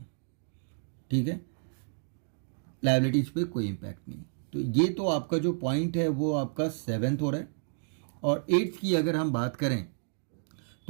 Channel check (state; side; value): silent; left; digital silence